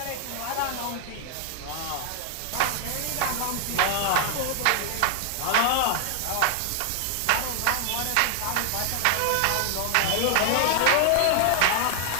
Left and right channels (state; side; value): different; both; correlation 0.00